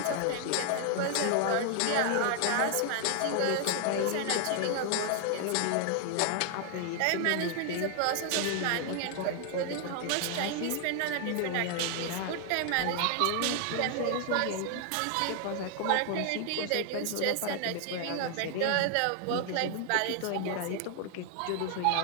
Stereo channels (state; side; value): different; both; correlation 0.00